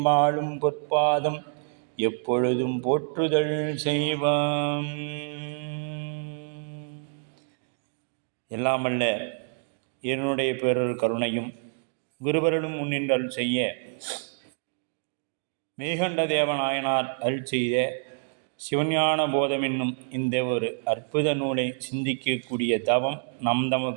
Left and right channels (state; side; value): silent; left; digital silence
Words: மாளும் பொற்பாதம் எப்பொழுதும் போற்றுதல் செய்வம். எல்லாமல்ல என்னுடைய பேரொரு கருணையும் குருவருளும் முன்னின்றல் செய்ய மேகண்ட தேவநாயனார் அருள் செய்த சிவஞான போதம் என்னும் இந்த ஒரு அற்புத நூலை சிந்திக்கக்கூடிய தவம் நம்